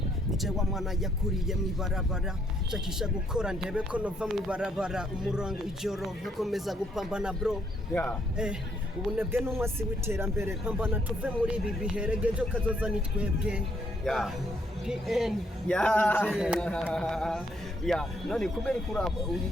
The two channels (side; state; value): both; normal; correlation 0.71